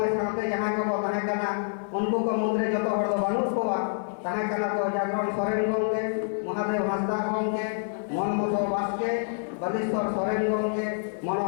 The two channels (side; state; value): right; silent; digital silence